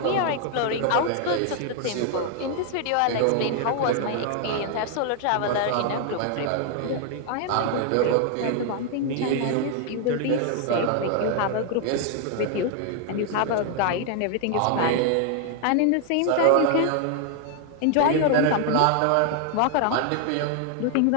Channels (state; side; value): different; both; correlation 0.00